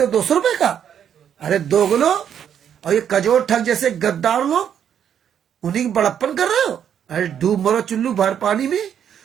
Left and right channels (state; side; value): quieter; left; 8.9 dB